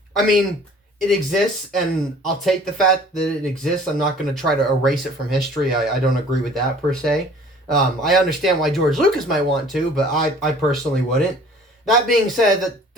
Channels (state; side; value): normal; both; correlation 0.50